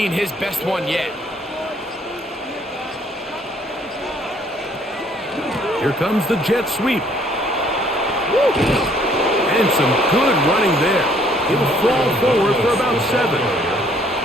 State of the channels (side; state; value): both; normal; correlation 0.62